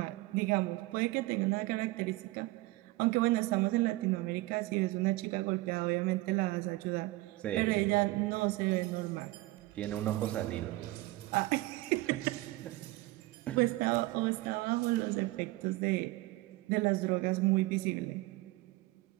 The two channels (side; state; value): left; quieter; 19.9 dB